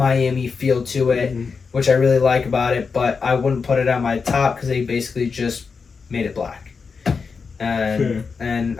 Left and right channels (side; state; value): right; quieter; 5.2 dB